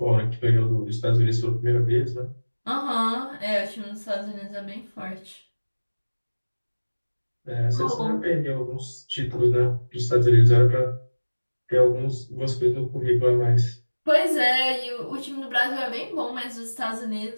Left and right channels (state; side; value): inverted; both; correlation -1.00